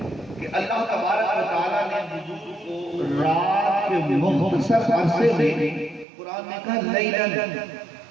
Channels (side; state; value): left; drops out; at 6.1 s